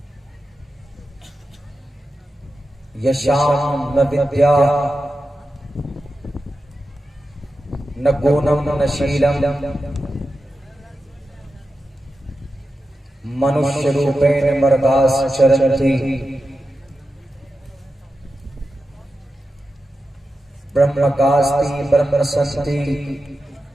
Yasham na vidya na gunam na Sheelam मनुष्य रूपेण मर्दास चरन्ति ब्रह्मकास्ति ब्रह्मसंति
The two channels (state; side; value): normal; both; correlation 0.91